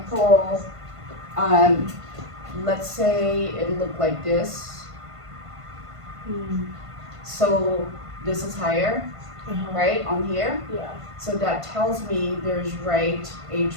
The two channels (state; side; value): late; left; 1.5 ms